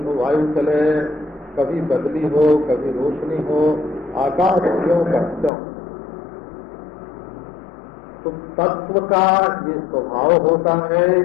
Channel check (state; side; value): drops out; right; at 5.5 s